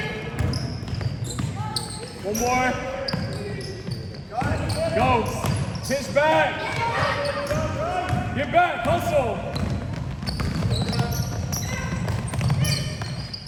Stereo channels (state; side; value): identical; both; correlation 1.00